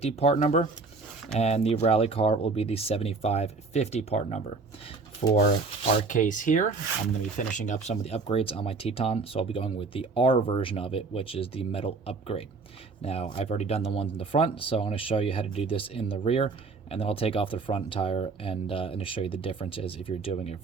part number, and the rally car will be the 7550 part number. For our case here, I'm going to be finishing up some of the upgrades on my Teton, so I'll be going with the R version of it, which is the metal upgrade. Now, I've already done the ones in the front, so I'm going to show you how to do this in the rear, and then I'll take off the front tire and show you the differences if you're doing a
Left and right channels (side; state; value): left; quieter; 4.1 dB